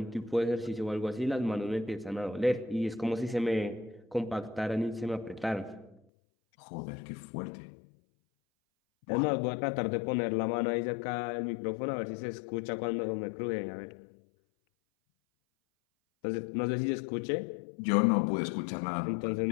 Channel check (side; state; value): right; drops out; at 6.0 s